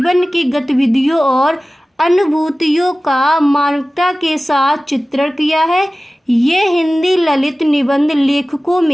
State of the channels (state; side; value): normal; both; correlation 0.97